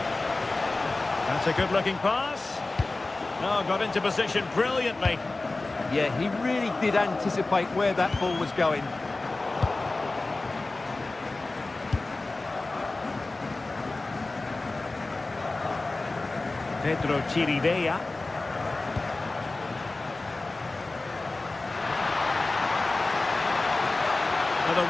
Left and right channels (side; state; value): right; quieter; 3.2 dB